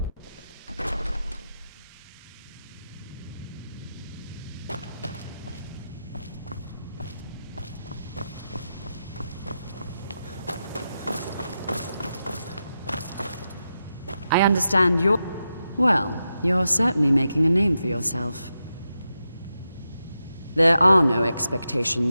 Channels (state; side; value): inverted; both; correlation -0.88